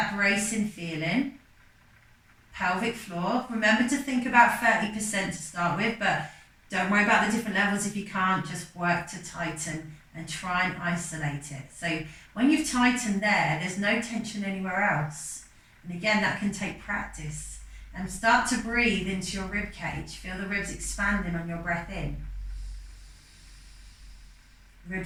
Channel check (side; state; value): both; identical; correlation 1.00